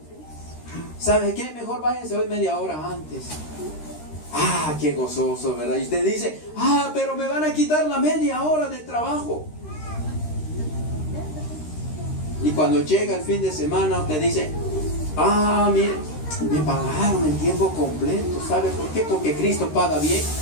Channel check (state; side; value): late; right; 13 ms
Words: ¿sabe qué? Mejor váyanse hoy media hora antes. Ah, qué gozoso, ¿verdad? Y usted dice, ah, pero me van a quitar la media hora de trabajo. Y cuando llega el fin de semana, usted dice, ah, mire, Me pagaron en tiempo completo. ¿Sabe por qué? Porque Cristo paga bien.